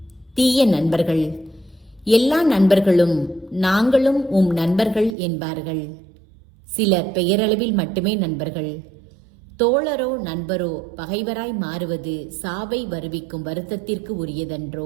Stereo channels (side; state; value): left; drops out; at 5.2 s